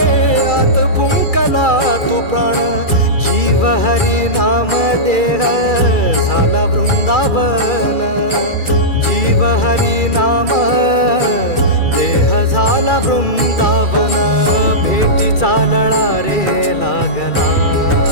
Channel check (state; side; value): late; right; 2.3 ms